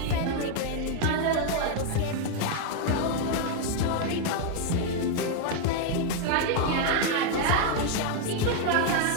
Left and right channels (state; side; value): different; both; correlation 0.00